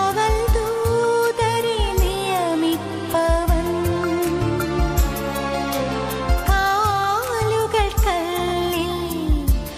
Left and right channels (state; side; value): identical; both; correlation 1.00